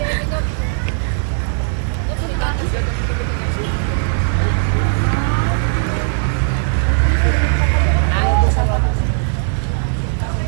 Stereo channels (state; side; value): silent; left; 60 dB below the other